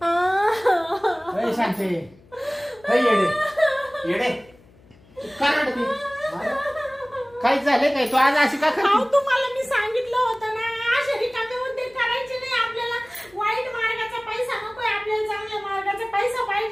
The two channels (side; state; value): left; noise; hum, 27 dB below the sound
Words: सांगते येडे तू का रडते? काय झालंय काय? तू आज अशी का अहो करते? तुम्हाला मी सांगितलं होतं ना अशा रिकामे उद्योग करायचे नाही. आपल्याला वाईट मार्गाचा पैसा नकोय, आपल्याला चांगल्या मार्गाचा पैसा